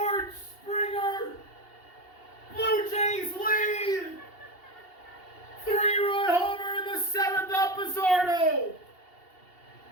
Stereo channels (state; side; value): late; right; 2.8 ms